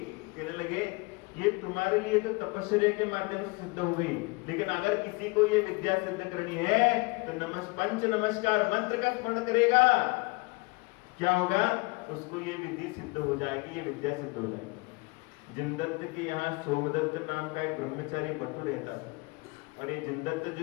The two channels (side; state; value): right; quieter; 26.7 dB